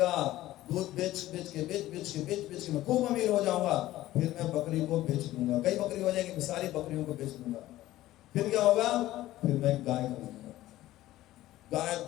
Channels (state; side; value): quieter; right; 15.4 dB